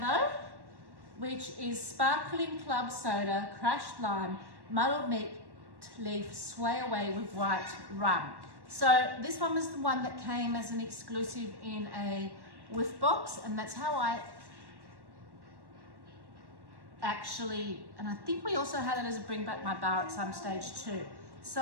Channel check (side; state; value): left; late; 1.1 ms